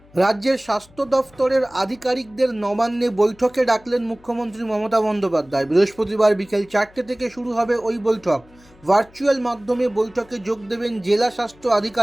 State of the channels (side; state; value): left; noise; hum, 27 dB below the sound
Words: রাজ্যের স্বাস্থ্য দফতরের আধিকারিকদের নবান্নে বৈঠকে ডাকলেন মুখ্যমন্ত্রী মমতা বন্দ্যোপাধ্যায়। বৃহস্পতিবার বিকেল 4টে থেকে শুরু হবে ওই বৈঠক। ভার্চুয়াল মাধ্যমে বৈঠকে যোগ দেবেন জেলা স্বাস্থ্য